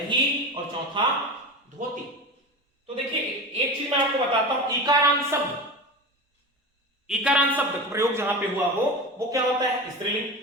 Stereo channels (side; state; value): both; normal; correlation 0.27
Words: और चौथा धोती। तो देखिए, एक चीज मैं आपको बताता हूं, इकारांत शब्द, इकारांत शब्द प्रयोग जहां पे हुआ हो वो क्या होता है? स्त्रीलिंग।